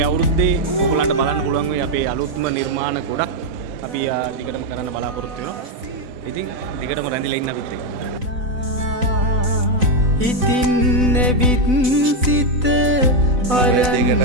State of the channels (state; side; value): late; left; 4.0 ms